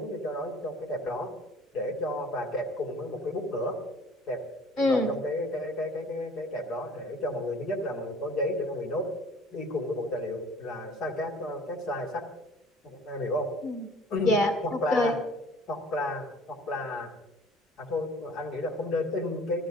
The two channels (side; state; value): both; normal; correlation 0.50